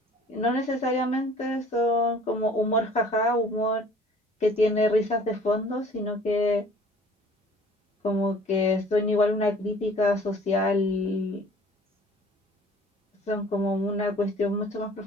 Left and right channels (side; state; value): both; normal; correlation 0.51